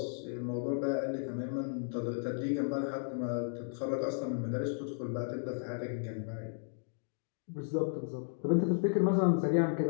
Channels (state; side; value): silent; right; digital silence